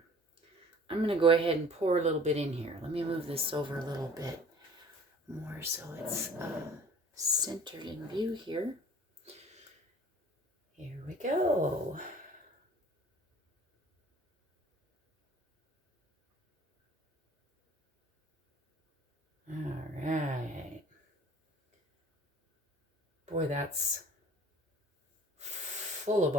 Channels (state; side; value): normal; both; correlation 0.48